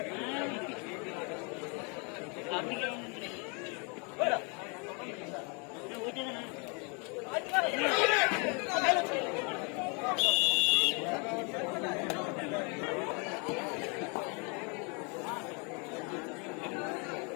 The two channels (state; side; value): quieter; right; 33.7 dB